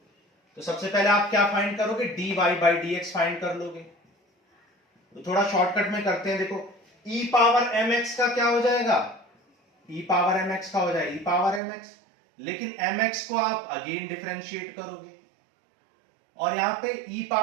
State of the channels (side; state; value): left; drops out; at 11.6 s